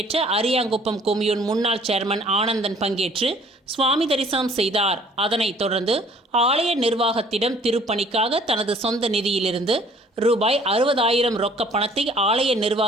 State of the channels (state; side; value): normal; both; correlation 0.56